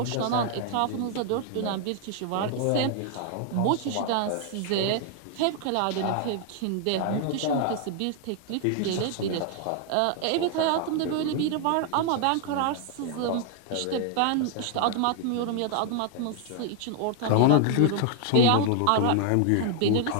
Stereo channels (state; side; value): different; both; correlation 0.00